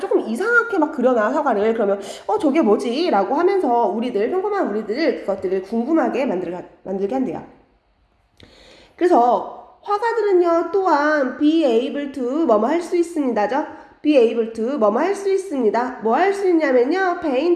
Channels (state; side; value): identical; both; correlation 1.00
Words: 이상하게 막 그려놔 사과를. 그러면 저게 뭐지? 라고 하면서 평범한 우리들 그것들을 궁금하게 만들게 한대요. 그래서 화가들은요 또한 be able to 뭐뭐 할 수 있습니다죠. be able to 뭐뭐 할 수 있습니다. 뭐 할 수 있냐면요